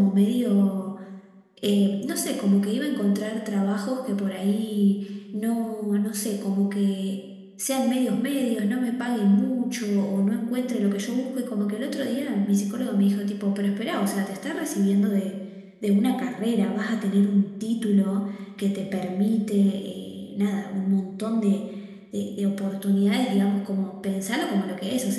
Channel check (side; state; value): both; identical; correlation 1.00